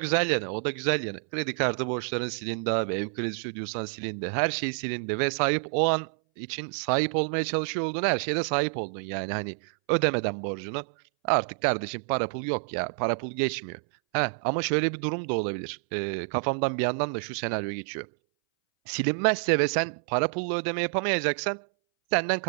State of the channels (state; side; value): silent; left; 59 dB below the other